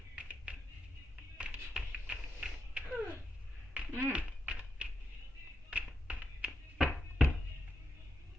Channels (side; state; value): both; normal; correlation 0.86